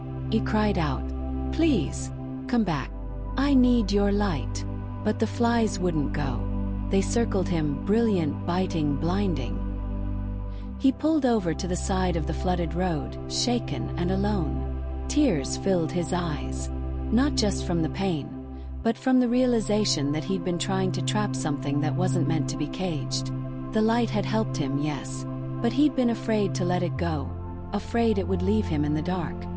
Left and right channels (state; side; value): identical; both; correlation 1.00